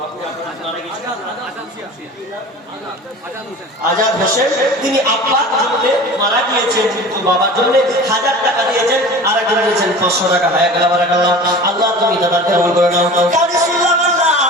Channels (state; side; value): normal; both; correlation 0.38